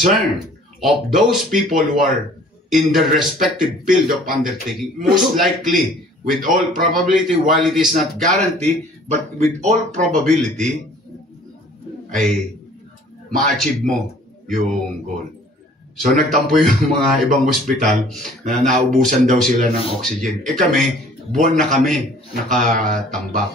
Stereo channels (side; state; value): both; normal; correlation 0.52